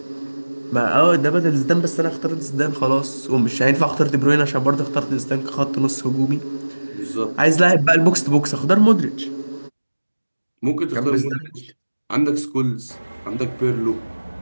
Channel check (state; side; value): inverted; both; correlation -1.00